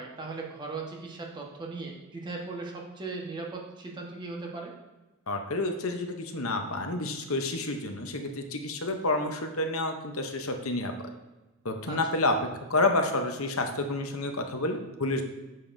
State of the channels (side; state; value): both; normal; correlation -0.10